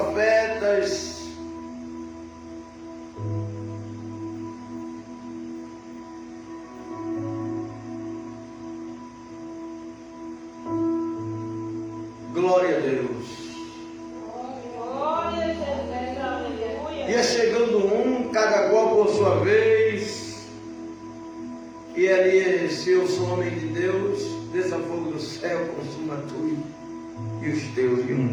Glória a Deus. Glória a Jesus, aleluia. Ia chegando cada qual por sua vez, e Elias, se eu sou homem de Deus, desça fogo do céu, consuma tu e os teus,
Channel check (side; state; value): both; identical; correlation 1.00